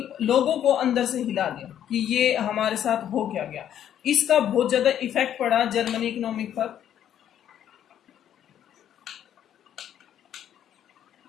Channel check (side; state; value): right; quieter; 10.3 dB